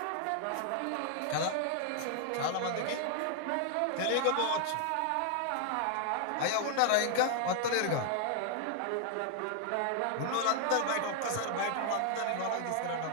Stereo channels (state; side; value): different; both; correlation 0.00